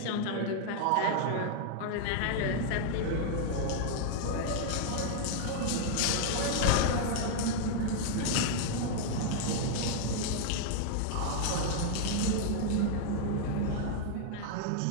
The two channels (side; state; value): both; different; correlation 0.00